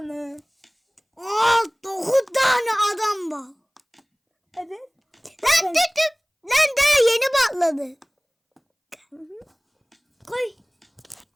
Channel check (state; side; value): identical; both; correlation 1.00